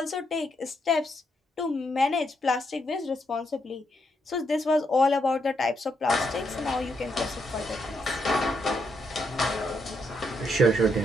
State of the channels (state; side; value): normal; both; correlation 0.78